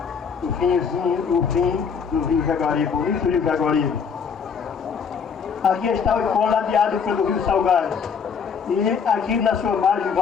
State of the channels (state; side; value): quieter; right; 6.3 dB